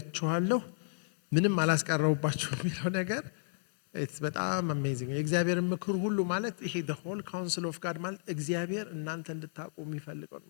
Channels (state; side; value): silent; right; 56 dB below the other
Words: ምንም አላስቀረብሁባችሁም የሚለው ነገር በጣም አሜዚንግ። የእግዚአብሔርን ምክር ሁሉ ማለት ይሄ the whole counsel of God ማለት እግዚአብሔር እናንተ እንድታውቁ የሚፈልገው።